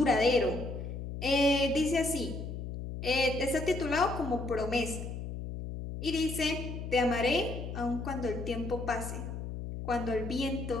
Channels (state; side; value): noise; left; hum, 6 dB below the sound